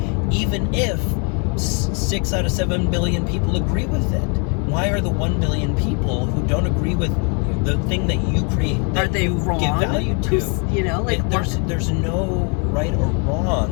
even if 6 out of 7 billion people agree with it? Why are the 1 billion people who don't agree with the thing that you create, that are they you wrong? give value to? There's no right or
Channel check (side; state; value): right; quieter; 36.3 dB